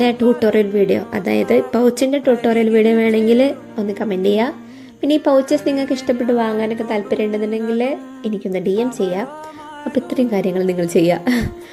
ട്യൂട്ടോറിയൽ വീഡിയോ, അതായത് പൗച്ചിൻ്റെ ട്യൂട്ടോറിയൽ വീഡിയോ വേണമെങ്കിൽ ഒന്ന് കമൻറ്റ് ചെയ്യുക. പിന്നെ ഈ പൗച്ചസ് നിങ്ങൾക്ക് ഇഷ്ടപ്പെട്ട് വാങ്ങാനൊക്കെ താല്പര്യം ഉണ്ടെന്നുണ്ടെങ്കിൽ എനിക്കൊന്ന് DM ചെയ്യാം. അപ്പോൾ ഇത്രയും കാര്യങ്ങൾ നിങ്ങൾ ചെയ്യുക,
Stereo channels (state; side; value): identical; both; correlation 1.00